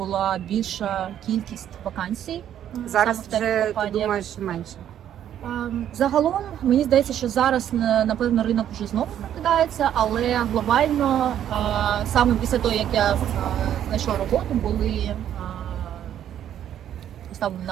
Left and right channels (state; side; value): quieter; left; 10.5 dB